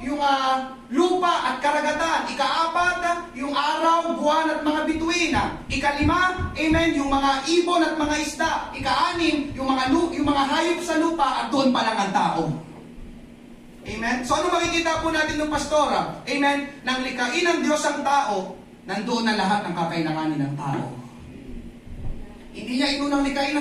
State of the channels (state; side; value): identical; both; correlation 1.00